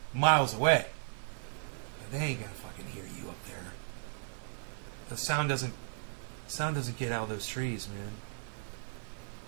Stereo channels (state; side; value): silent; left; 54 dB below the other